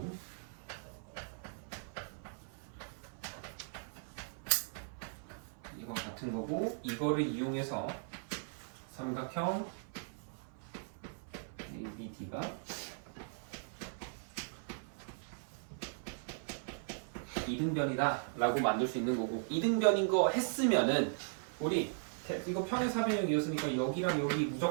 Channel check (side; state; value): left; silent; 52 dB below the other